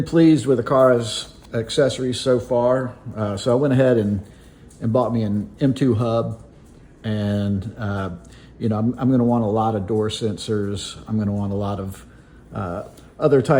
pleased with Aqara's accessories so far. So I went ahead and bought me an M2 hub, and I'm going to want a lot of door sensors. I'm going to want a lot of other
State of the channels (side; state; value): both; identical; correlation 1.00